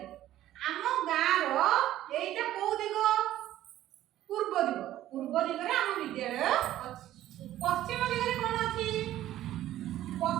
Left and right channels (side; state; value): left; quieter; 13.5 dB